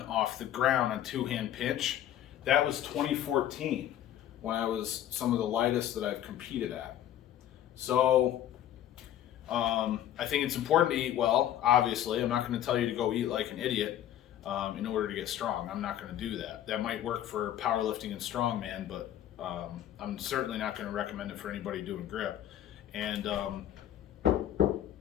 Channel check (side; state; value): right; quieter; 11.6 dB